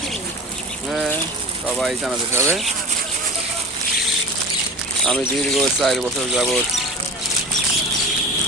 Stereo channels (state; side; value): normal; both; correlation 0.35